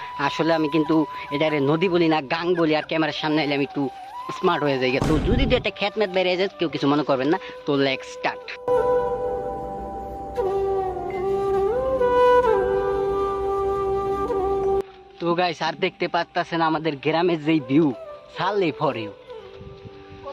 আসলে আমি কিন্তু এটারে নদী বলি না, গাং বলি, আর ক্যামেরার সামনে এলে আমি একটু স্মার্ট হয়ে যাই। তো যদি একটা খ্যাত ম্যাত বেড়ে যায়, কেউ কিছু মনে করবেন না। তো লেটস স্টার্ট। তো গাইস, আর দেখতে পাচ্ছেন আমাদের গ্রামের যেই ভিউ, সাললেই ফর ইউ।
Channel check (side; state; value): both; identical; correlation 1.00